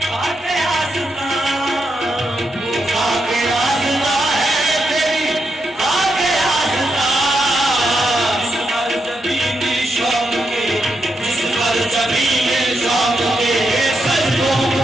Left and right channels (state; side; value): normal; both; correlation 0.84